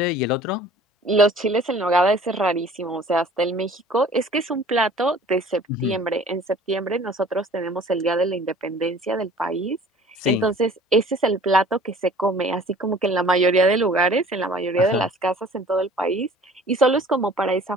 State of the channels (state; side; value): normal; both; correlation 0.50